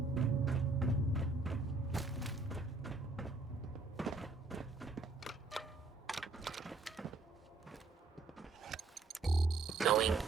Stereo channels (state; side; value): quieter; left; 3.8 dB